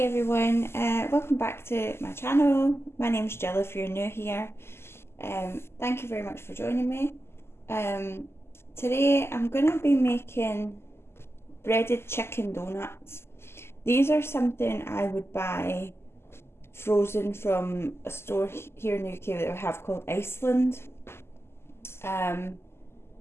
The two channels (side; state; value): right; late; 0.12 ms